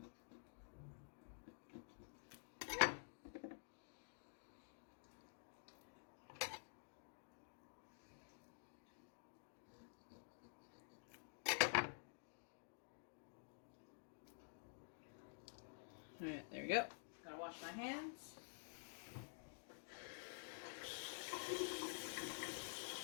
Alright, there we go. Gotta wash my hands.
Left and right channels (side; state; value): right; silent; digital silence